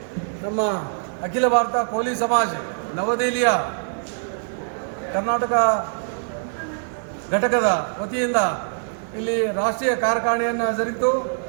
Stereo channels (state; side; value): silent; left; digital silence